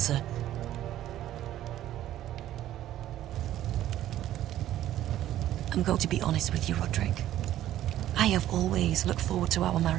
I'm going to be honest with you, Roderick. I have always looked forward to our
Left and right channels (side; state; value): left; quieter; 12.9 dB